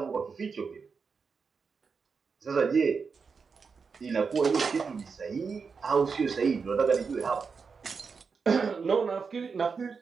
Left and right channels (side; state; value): left; quieter; 5.3 dB